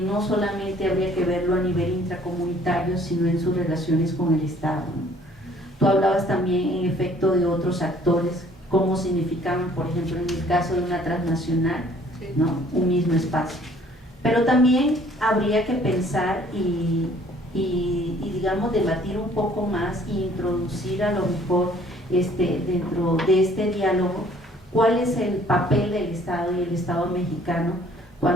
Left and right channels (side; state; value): right; noise; hum, 29 dB below the sound